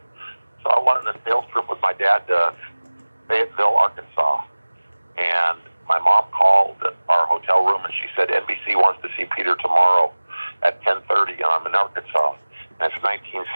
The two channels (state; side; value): inverted; both; correlation -1.00